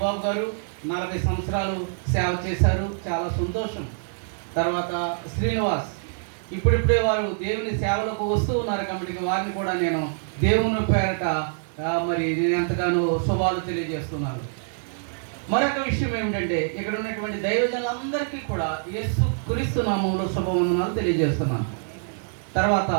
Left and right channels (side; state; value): left; silent; digital silence